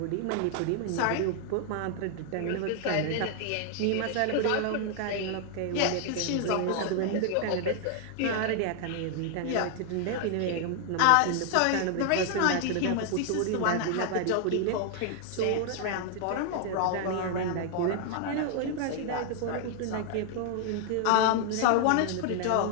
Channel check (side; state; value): both; different; correlation 0.00